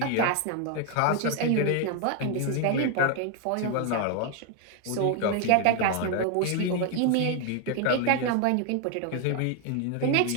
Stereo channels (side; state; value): both; different; correlation 0.01